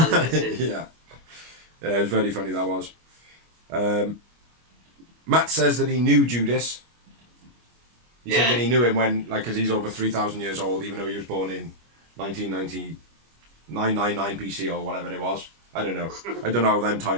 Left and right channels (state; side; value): late; left; 25 ms